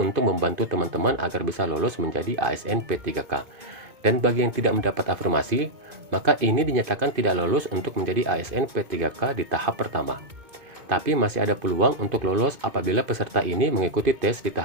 untuk membantu teman-teman agar bisa lolos menjadi ASN P3K. Dan bagi yang tidak mendapat afirmasi, maka ini dinyatakan tidak lolos untuk menjadi ASN P3K di tahap pertama. Tapi masih ada peluang untuk lolos apabila peserta ini mengikuti tes di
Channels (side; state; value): left; late; 2.5 ms